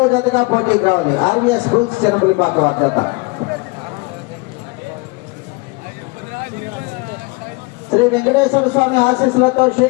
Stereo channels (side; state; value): right; quieter; 26.2 dB